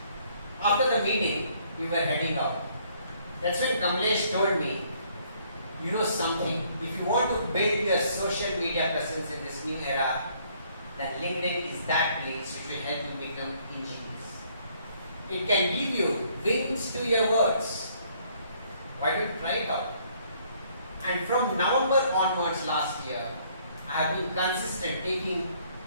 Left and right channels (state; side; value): inverted; both; correlation -0.64